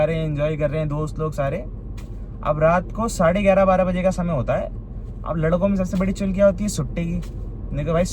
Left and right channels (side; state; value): both; identical; correlation 1.00